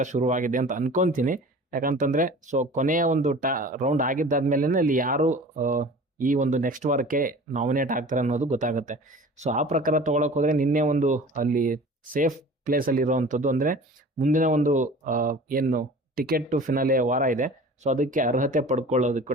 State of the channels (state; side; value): normal; both; correlation 0.42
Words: ಶುರುವಾಗಿದೆ ಅಂತ ಅನ್ಕೊಂತೀನಿ. ಯಾಕಂತಂದ್ರೆ ಸೊ ಕೊನೆಯ ಒಂದು ರೌಂಡ್ ಆಗಿದ್ದಾದ್ಮೇಲೆ ಅಲ್ಲಿ ಯಾರು ಈ ಒಂದು ನೆಕ್ಸ್ಟ್ ವಾರಕ್ಕೆ ನಾಮಿನೇಟ್ ಆಗ್ತಾರೆ ಅನ್ನೋದು ಗೊತ್ತಾಗುತ್ತೆ. ಸೊ ಆ ಪ್ರಕಾರ ತಗೊಳಕ್ ಹೋದ್ರೆ ನಿನ್ನೆ ಒಂದು ಅಲ್ಲಿ ಸೇಫ್ ಪ್ಲೇಸ್ ಅಲ್ಲಿ ಇರುವಂಥದ್ದು, ಅಂದ್ರೆ ಮುಂದಿನ ಒಂದು ಏನು ಟಿಕೆಟ್ ಟು ಫಿನಾಲೆ ವಾರ ಇದೆ, ಸೊ ಅದಕ್ಕೆ ಅರ್ಹತೆ ಪಡ್ಕೊಳ್ಳೋದಕ್ಕೂ